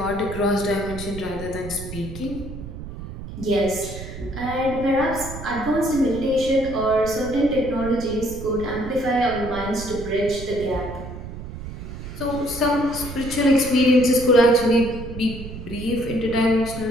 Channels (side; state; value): right; noise; rumble, 11 dB below the sound